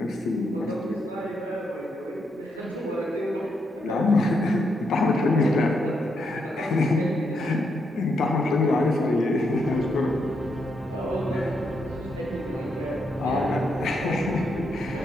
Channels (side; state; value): both; normal; correlation 0.79